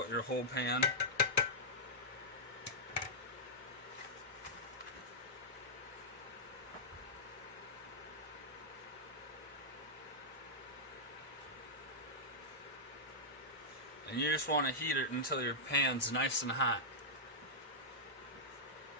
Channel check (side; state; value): both; normal; correlation -0.10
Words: your whole pan. And you just want to heat it until your pan's nice and hot.